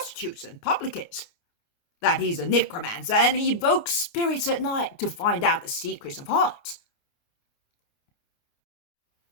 and publicans, that he's a necromancer and he evokes spirits at night to find out the secrets of hearts?"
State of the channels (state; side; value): late; right; 29 ms